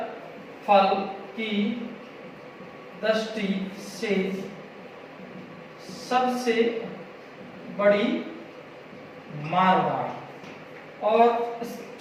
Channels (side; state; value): both; identical; correlation 1.00